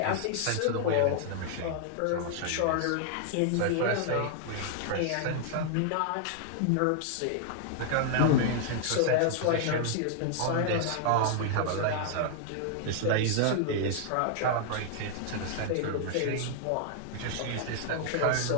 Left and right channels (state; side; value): different; both; correlation -0.01